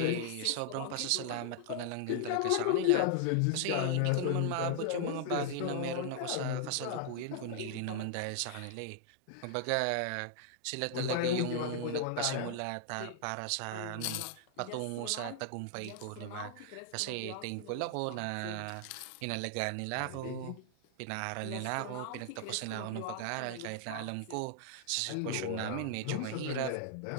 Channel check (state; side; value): different; both; correlation 0.00